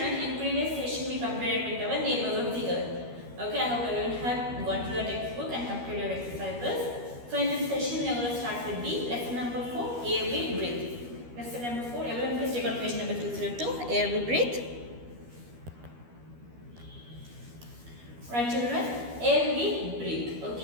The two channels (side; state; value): left; late; 12 ms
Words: in previous session we compared with our neighbors of the earth. Okay, I hope everyone have gone through your textbook and completed your exercises. So in this session we are going to start with the lesson number 4, air we breathe. Lesson number 4, everyone please take out page number 202, air we breathe. Right children, air we breathe.